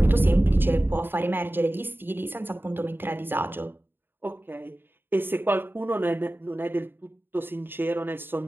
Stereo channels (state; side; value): late; left; 0.099 ms